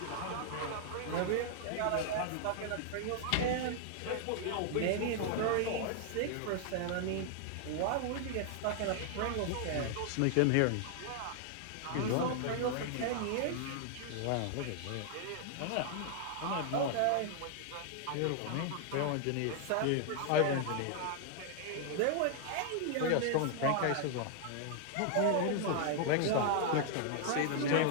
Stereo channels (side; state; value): both; different; correlation 0.00